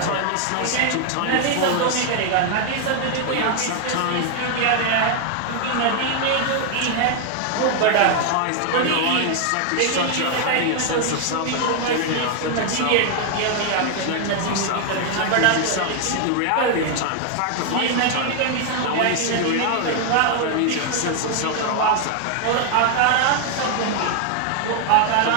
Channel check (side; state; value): both; different; correlation 0.00